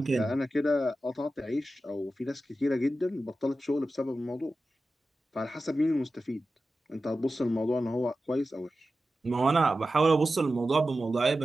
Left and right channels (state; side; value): normal; both; correlation 0.93